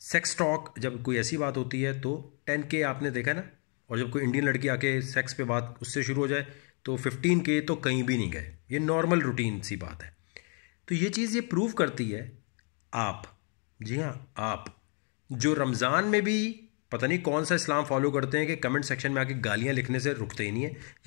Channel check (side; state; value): right; quieter; 38.9 dB